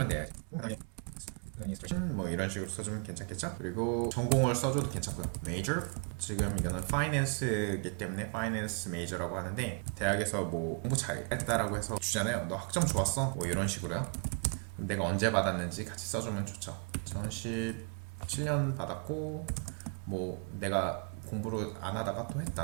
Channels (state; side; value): quieter; left; 38.8 dB